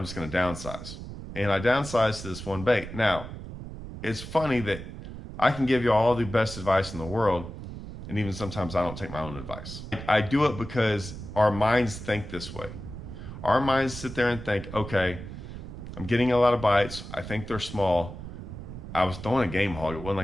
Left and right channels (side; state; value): right; noise; rumble, 11 dB below the sound